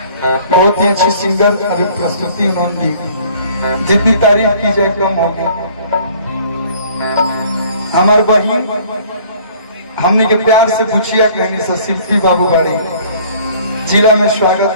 बहुत ही अच्छी सिंगर अभी प्रस्तुति उन्होंने दी, जितनी तारीफ की जाए कम होगी। हमारे बहन हमने के प्यार से पूछिया कहनी से शिल्पी बाबू बाड़ी, जिला में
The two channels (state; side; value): inverted; both; correlation -0.54